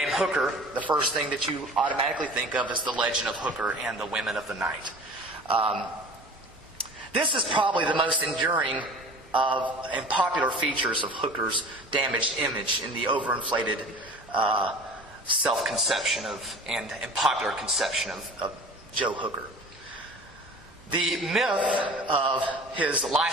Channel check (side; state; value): both; normal; correlation 0.42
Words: Hooker, the first thing that you automatically think of is the legend of Hooker and the women of the night. This is probably the most enduring and popular features of Hooker's damaged image in the overinflated self-conception and popular conception of Joe Hooker. The myth of his